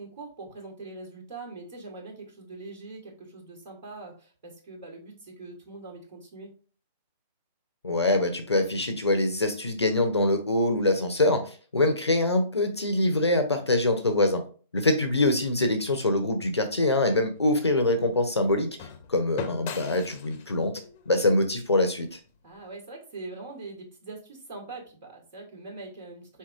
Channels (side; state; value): both; inverted; correlation -0.53